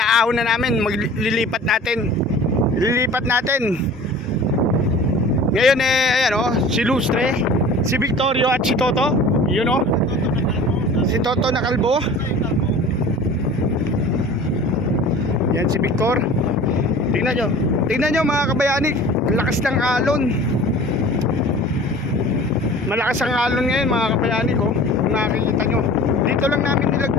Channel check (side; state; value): both; normal; correlation 0.42